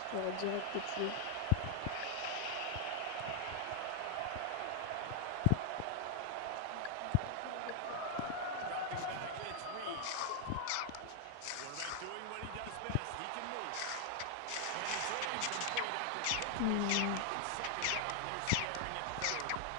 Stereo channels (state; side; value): different; both; correlation 0.00